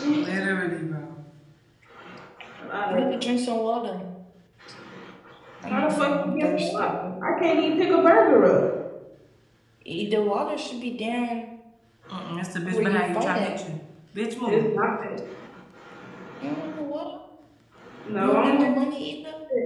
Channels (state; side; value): identical; both; correlation 1.00